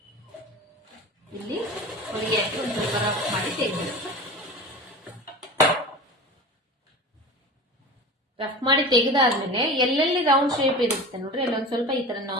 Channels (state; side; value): normal; both; correlation 0.33